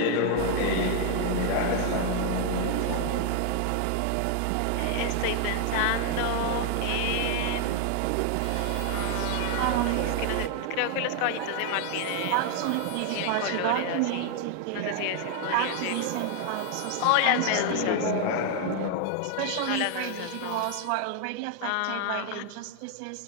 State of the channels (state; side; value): different; both; correlation 0.00